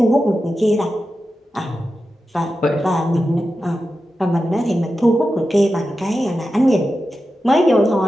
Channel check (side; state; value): both; normal; correlation 0.91